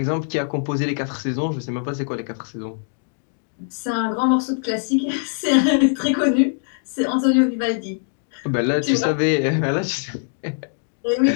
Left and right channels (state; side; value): silent; right; digital silence